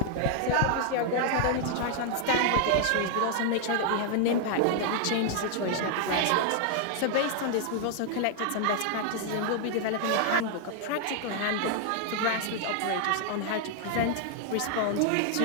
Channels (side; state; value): both; different; correlation 0.00